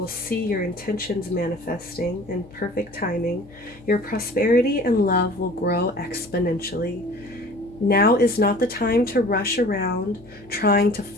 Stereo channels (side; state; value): left; noise; hum, 23 dB below the sound